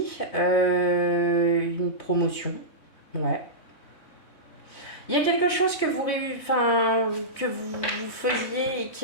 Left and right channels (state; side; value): late; right; 3.6 ms